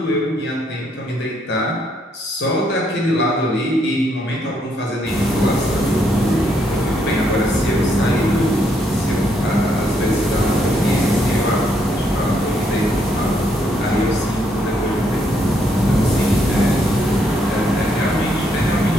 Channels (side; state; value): both; normal; correlation 0.74